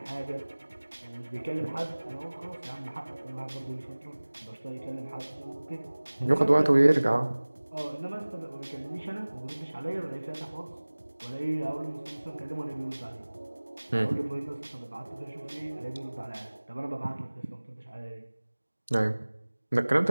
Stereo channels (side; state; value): both; inverted; correlation -1.00